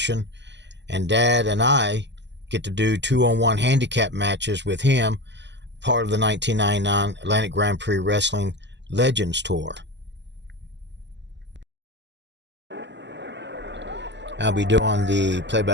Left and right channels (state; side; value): late; left; 0.51 ms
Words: and Dad and I get to do 2-on-1 handicap matches with him, part of the 1999 Atlantic Grand Prix Wrestling Legends Tour. I'll be doing the